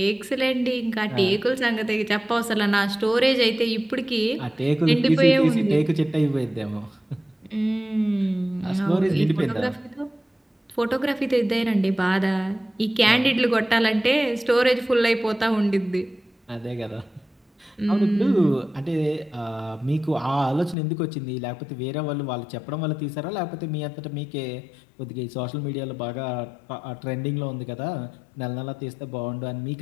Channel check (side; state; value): right; drops out; at 20.8 s